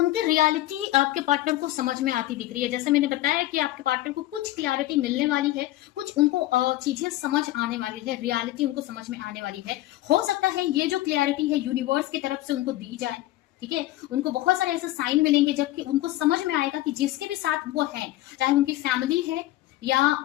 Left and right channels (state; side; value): quieter; right; 16.1 dB